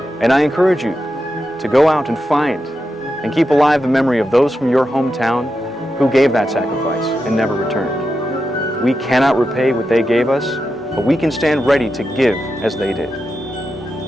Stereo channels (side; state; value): both; normal; correlation 0.88